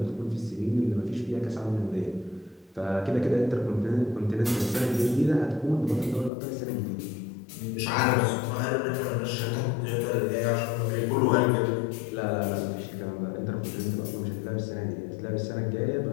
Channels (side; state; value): right; drops out; at 6.3 s